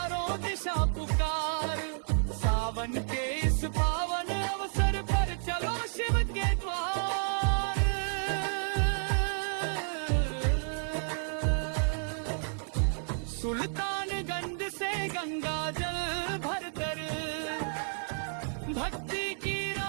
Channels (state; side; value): silent; left; 57 dB below the other